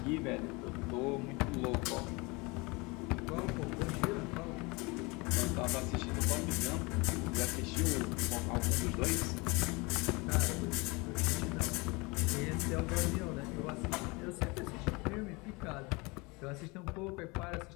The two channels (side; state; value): right; quieter; 26.4 dB